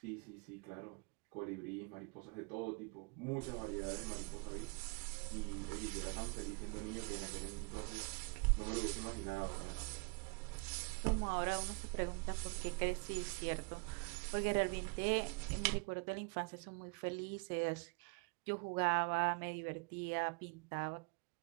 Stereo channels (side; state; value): left; quieter; 33.1 dB